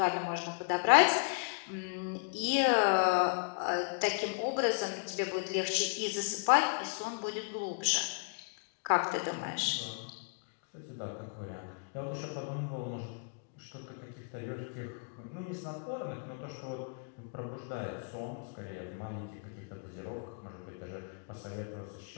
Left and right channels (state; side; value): quieter; right; 39.4 dB